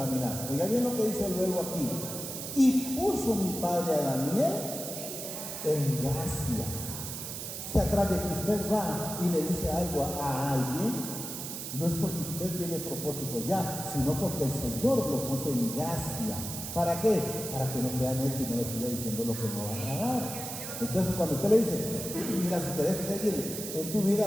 Oiga bien lo que dice luego aquí. Y puso mi padre a Daniel en gracia. O sea, tras de que usted va y le dice algo a alguien, no es porque usted tiene propósito ya, sino porque el Señor lo puso en gracia. ¿Para qué? Para que no sea necio y no le siga diciendo lo que no va a agradar. Entonces, cuando usted le dice, mira, si querés seguir en tu vida,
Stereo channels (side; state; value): right; noise; hiss, 7 dB below the sound